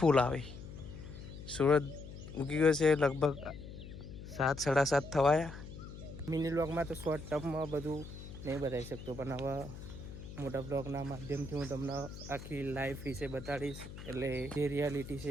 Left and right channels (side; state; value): left; noise; hum, 12 dB below the sound